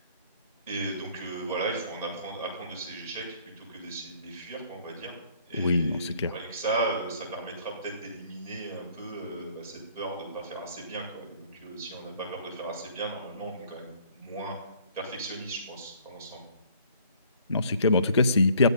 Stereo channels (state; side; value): inverted; both; correlation -0.58